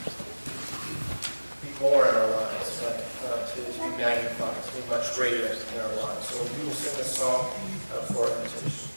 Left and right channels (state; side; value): inverted; both; correlation -1.00